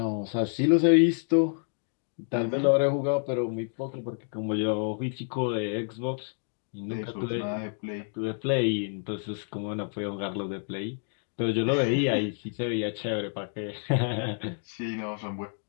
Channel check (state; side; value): silent; right; 59 dB below the other